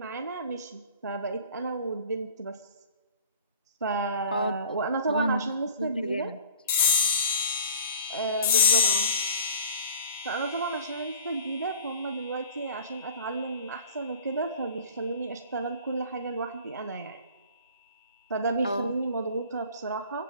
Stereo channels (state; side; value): inverted; both; correlation -0.45